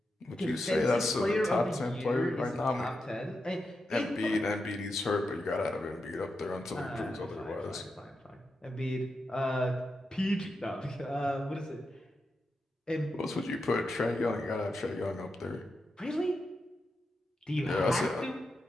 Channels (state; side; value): normal; both; correlation 0.87